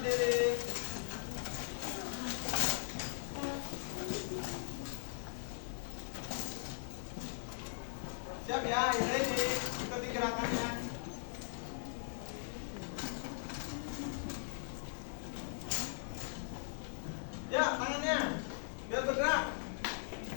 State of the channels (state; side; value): silent; right; 52 dB below the other